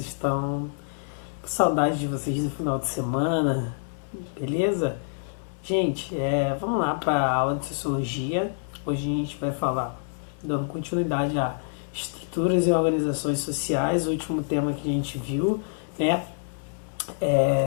Que saudade de vocês no final de semana, beleza? Gente, vamos lá para a aula de Sociologia. Hoje a gente vai falar, dando continuidade a estruturas e organizações sociais, o último tema que a gente viu, né?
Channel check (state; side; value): silent; right; 60 dB below the other